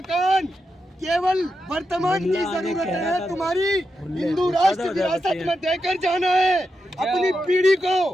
केवल वर्तमान की जरूरत है, तुम्हारी हिंदू राष्ट्र विरासत में देकर जाना है अपनी पीढ़ी को,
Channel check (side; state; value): both; normal; correlation 0.87